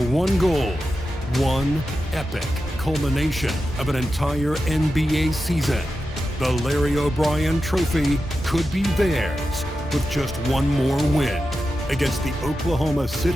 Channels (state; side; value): normal; both; correlation 0.91